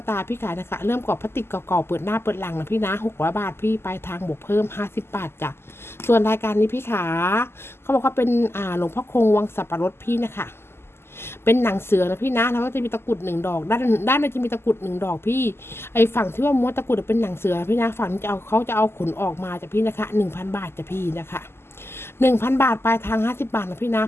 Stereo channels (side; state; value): right; late; 0.12 ms